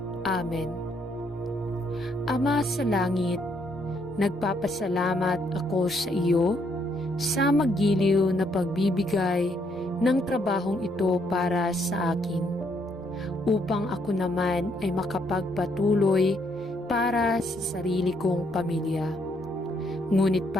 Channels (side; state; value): both; normal; correlation 0.72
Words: Amen. Ama sa langit, nagpapasalamat ako sa iyo sa magiliw na pagbibigay ng trabahong ito para sa akin, upang ako naman ay makapagpatuloy para sa sarili kong pamilya. Ngunit